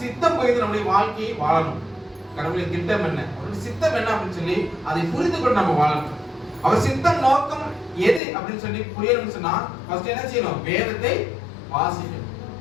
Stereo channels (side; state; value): right; drops out; at 8.2 s